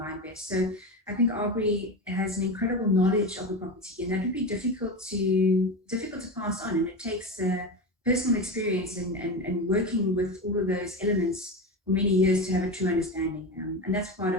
best. So I think Aubrey has an incredible knowledge of the property, and that would be difficult to pass on, and it takes personal experience and working with all of those elements for many years to have a true understanding, and that's part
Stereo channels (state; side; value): normal; both; correlation 0.22